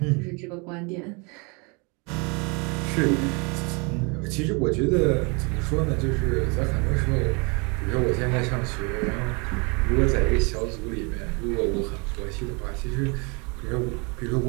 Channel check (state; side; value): quieter; left; 31.5 dB